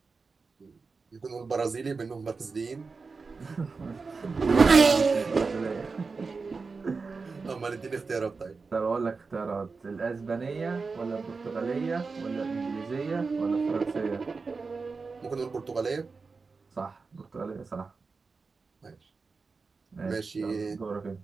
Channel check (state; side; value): quieter; left; 4.5 dB